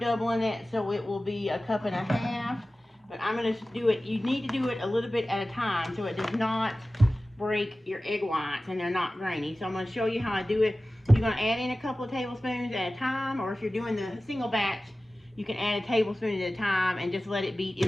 it, so it will be 1.5 cups. But I'm going to do it, you need to do it a little bit at a time so it does not break your egg whites and they're not grainy. So I'm going to show you how I do it. You're going to add in a couple of tablespoons at a time, or if you're doing the single batch, You can add a tablespoon at a time and just let it beat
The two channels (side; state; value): both; normal; correlation 0.96